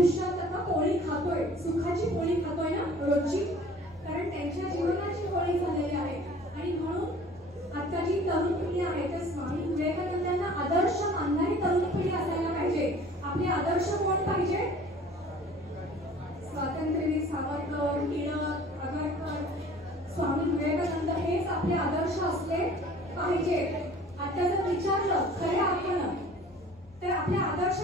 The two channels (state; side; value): normal; both; correlation 0.48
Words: खातोय, सुखाची पोळी खातोय ना रोजची, कारण त्यांच्या जीवनाची पोळी झालेली आहे. आणि म्हणून आता जी तरुण पिढी आहे तर स्वामी विवेकानंदांना आदर्श मानणारी तरुण पिढी असायला पाहिजे. आपले आदर्श कोण पाहिजे? स्वातंत्र्यवीर सावरकर, टिळक, आगरकर, स्वामी विवेकानंद हेच आपले आदर्श असले पाहिजे. आता जर विचारलं खऱ्या अर्थानं तर आपले आदर्श